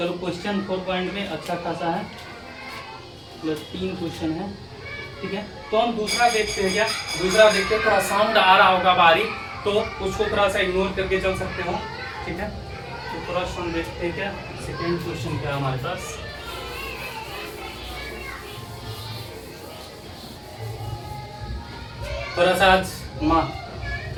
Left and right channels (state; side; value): identical; both; correlation 1.00